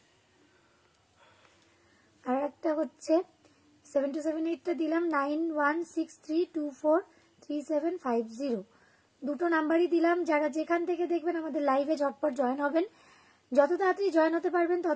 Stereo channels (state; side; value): identical; both; correlation 1.00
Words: আর একটা হচ্ছে 7278টা দিলাম 9163243750, দুটো নাম্বারই দিলাম। যারা যেখান থেকে দেখবেন আমাদের লাইভে ঝটপট জয়েন হবেন। যত তাড়াতাড়ি জয়েন হতে পারবেন